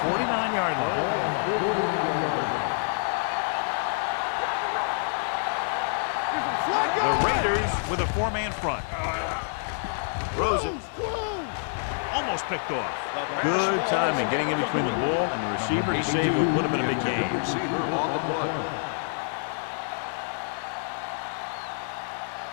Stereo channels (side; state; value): right; silent; 60 dB below the other